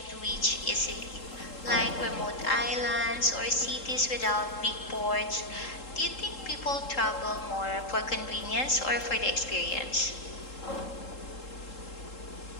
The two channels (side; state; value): right; late; 3.7 ms